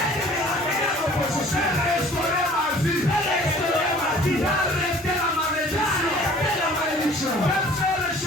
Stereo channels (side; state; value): both; normal; correlation 0.51